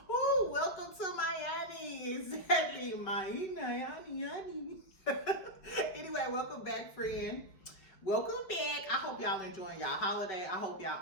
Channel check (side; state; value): right; late; 5.1 ms